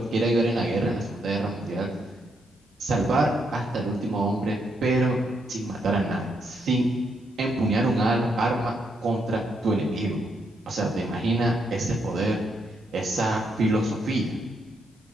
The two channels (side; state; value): both; normal; correlation 0.77